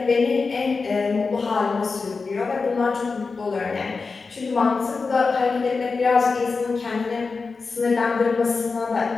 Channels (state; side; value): quieter; right; 4.4 dB